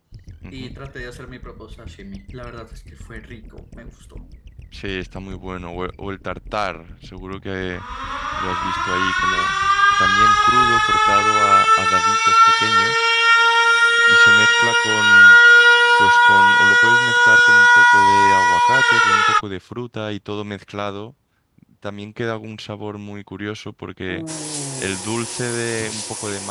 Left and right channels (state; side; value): identical; both; correlation 1.00